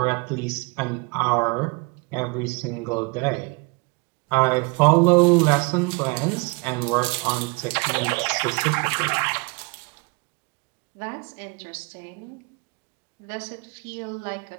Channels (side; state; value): left; quieter; 29.2 dB